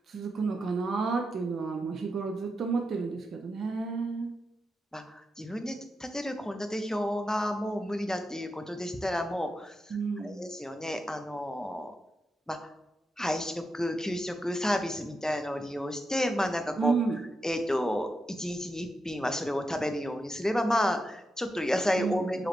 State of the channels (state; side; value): normal; both; correlation 0.87